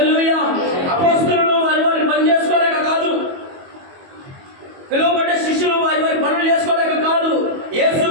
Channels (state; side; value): late; left; 22 ms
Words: అపోస్తలులు వారి పని చేసుకోలేక కాదు, పిలువబడ్డ శిష్యులు వారి పనులు చేసుకోలేక కాదు,